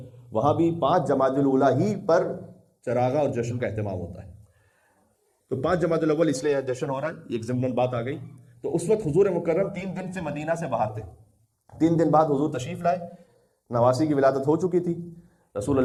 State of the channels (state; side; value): identical; both; correlation 1.00